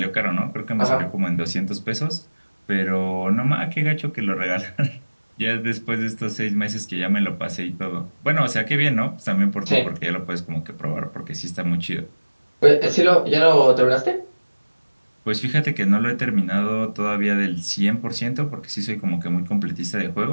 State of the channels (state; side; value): inverted; both; correlation -1.00